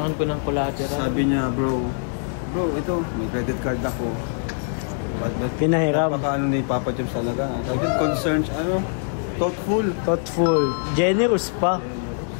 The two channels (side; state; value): right; silent; digital silence